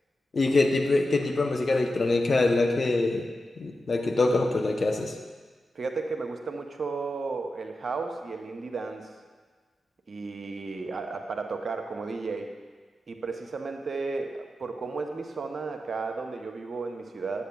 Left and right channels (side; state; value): both; normal; correlation 0.90